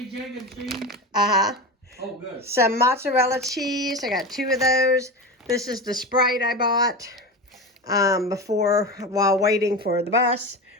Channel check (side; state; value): both; normal; correlation 0.24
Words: egg, and cheese? Uh-huh. Oh, good. Some mozzarella cheese. I got 2 of those. This is the Sprite I bought while waiting for the bus.